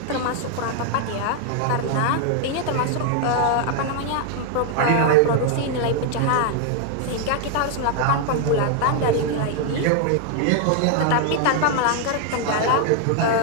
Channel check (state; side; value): different; both; correlation 0.00